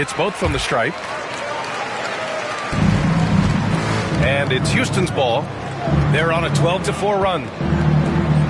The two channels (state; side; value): identical; both; correlation 1.00